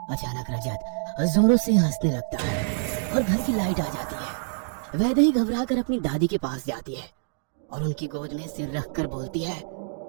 अचानक रजत जोरों से हंसने लगता है और घर की लाइट आ जाती है। वैदेही घबराकर अपनी दादी के पास जाती है और उनकी गोद में सिर रखकर बोलती है,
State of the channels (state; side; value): silent; left; digital silence